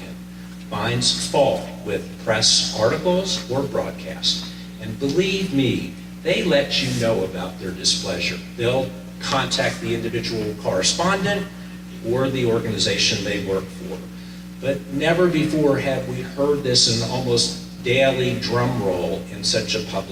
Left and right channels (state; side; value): identical; both; correlation 1.00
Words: finds fault with press articles or broadcasts. And believe me, they let you know about their displeasure. They'll contact the individual correspondent or the organization they work for. But never before have we heard this in almost daily drum roll in such a